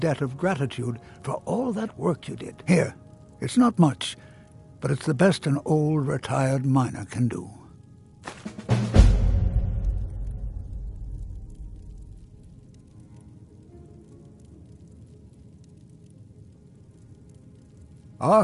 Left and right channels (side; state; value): both; identical; correlation 1.00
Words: of gratitude for all that work you did. Here, it's not much, but it's the best an old retired miner can do. Our